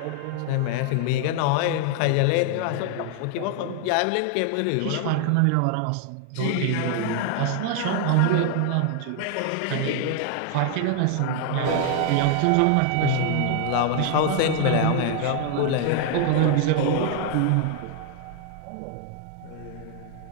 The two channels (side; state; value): both; different; correlation 0.00